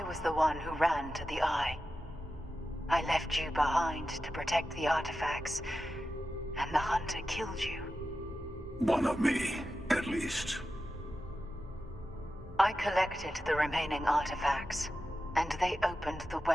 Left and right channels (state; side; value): normal; both; correlation 0.92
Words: was the one who ran to the Eye. I left you behind to protect the artifacts, and the Hunter killed you. One of me, at least. I collected the remaining artifacts, and they opened the